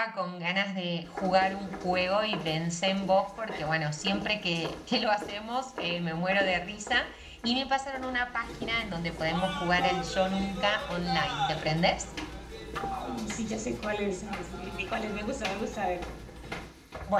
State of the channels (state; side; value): identical; both; correlation 1.00